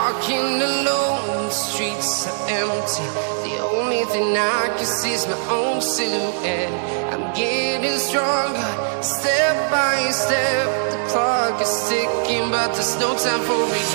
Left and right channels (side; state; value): left; silent; 65 dB below the other